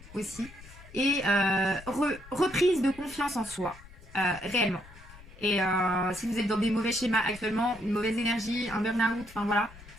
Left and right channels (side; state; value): left; noise; rumble, 19 dB below the sound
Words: aussi, et reprise de confiance en soi, réellement. Et si vous êtes dans des mauvais schémas actuellement, une mauvaise énergie, un burn-out, enfin voilà,